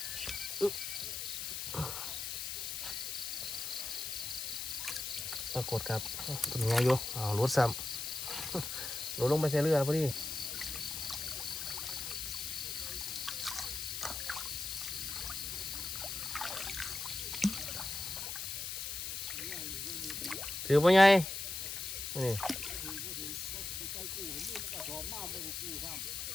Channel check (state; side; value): noise; left; hiss, 4 dB below the sound